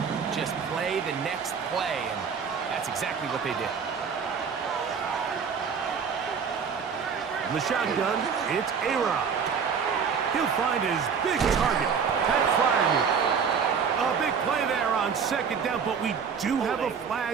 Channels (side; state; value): left; quieter; 6.4 dB